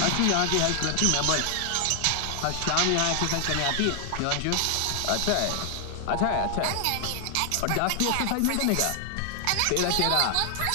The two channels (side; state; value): both; different; correlation 0.00